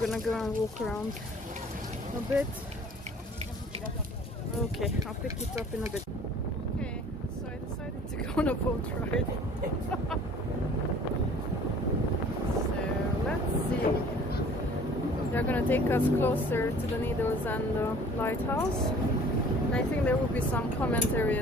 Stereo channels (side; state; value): both; normal; correlation 0.50